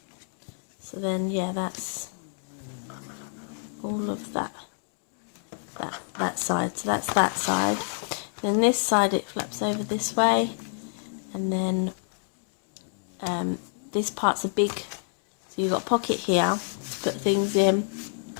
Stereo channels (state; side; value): silent; right; digital silence